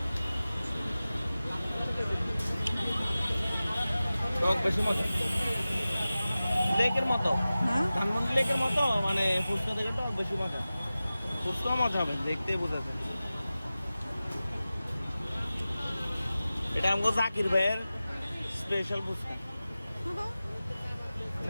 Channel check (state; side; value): inverted; both; correlation -0.96